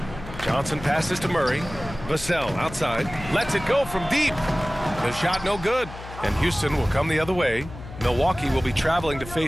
Johnson passes to Murray. Vassell outside. Lets it go from deep. The shot no good. And Houston will come the other way. Milwaukee will be traveling to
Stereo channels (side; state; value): left; noise; hum, 13 dB below the sound